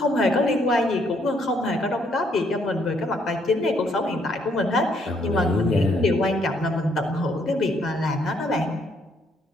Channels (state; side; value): normal; both; correlation 0.70